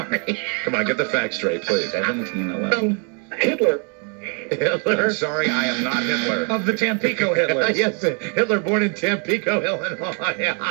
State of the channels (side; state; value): left; quieter; 38.4 dB